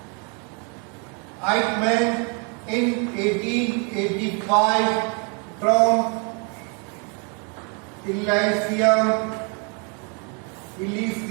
Eichmann in 1885 from Illicium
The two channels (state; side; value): quieter; left; 35.9 dB